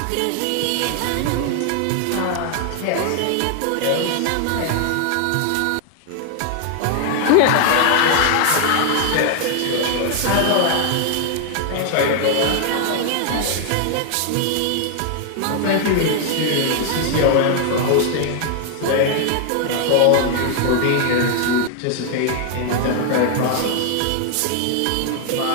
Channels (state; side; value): different; both; correlation 0.00